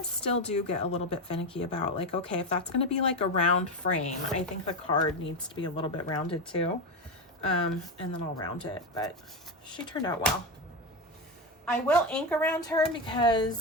still do get a little bit finicky about, like, okay, if that's going to be like a round frame, I think the card needs to be a little bit rounded too. And then I'll round it, but she turned out well. I will ink around her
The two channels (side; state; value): both; normal; correlation 0.14